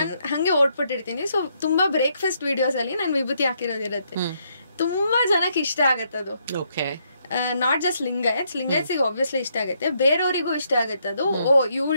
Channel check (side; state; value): both; inverted; correlation -0.74